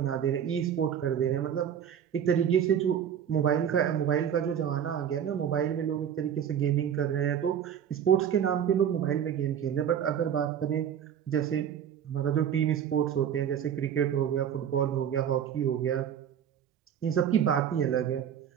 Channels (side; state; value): left; quieter; 8.9 dB